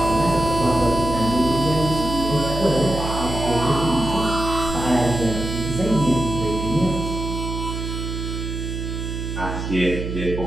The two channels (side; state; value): right; noise; hum, 5 dB below the sound